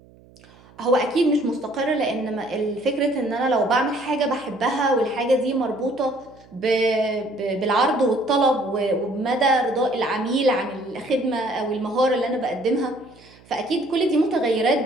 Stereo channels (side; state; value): right; noise; hum, 26 dB below the sound